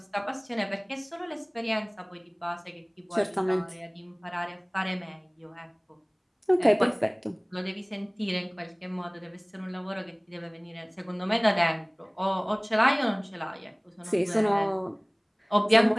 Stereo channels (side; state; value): both; identical; correlation 1.00